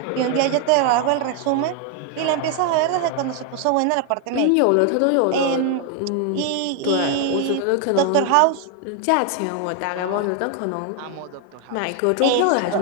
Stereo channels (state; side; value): different; both; correlation 0.01